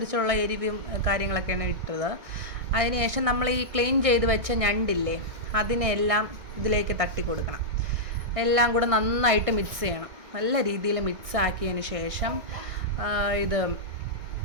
എരിവും കാര്യങ്ങളൊക്കെയാണ് ഇട്ടത്. അതിനുശേഷം നമ്മൾ ഈ ക്ലീൻ ചെയ്ത് വെച്ച ഞണ്ടില്ലേ, അതിനെല്ലാം ഇതിലേക്ക് തട്ടി കൊടുക്കണം. എല്ലാം കൂടെ നന്നായിട്ട് മിക്സ് ചെയ്യണം. നല്ല രീതിയിൽ മിക്സ് ആക്കിയതിന് ശേഷം ഇത്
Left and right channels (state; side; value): late; left; 1.6 ms